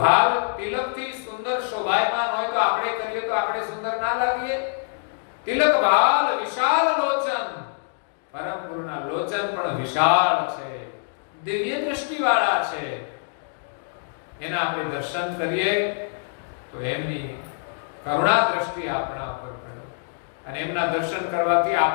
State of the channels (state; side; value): silent; right; digital silence